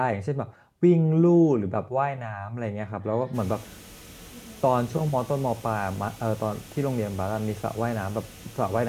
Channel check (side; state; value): both; identical; correlation 1.00